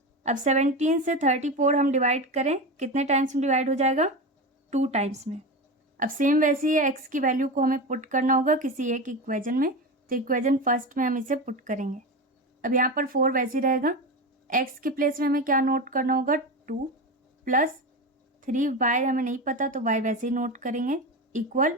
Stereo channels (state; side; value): normal; both; correlation 0.22